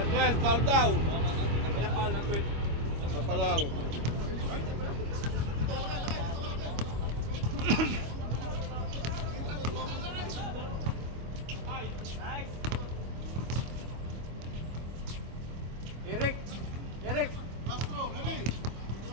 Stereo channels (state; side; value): late; left; 25 ms